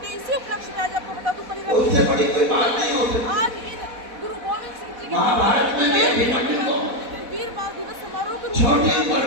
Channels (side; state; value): left; late; 4.1 ms